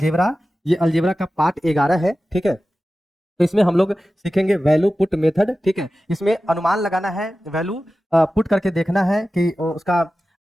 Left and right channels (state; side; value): normal; both; correlation 0.95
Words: ये अलजेब्रा का पार्ट 11 है, ठीक है। तो इसमें हम लोग सीखेंगे वैल्यू पुट मेथड, ठीक है। इसमें अनुमान लगाना है, वैल्यू पुट करके देखना है कि उसका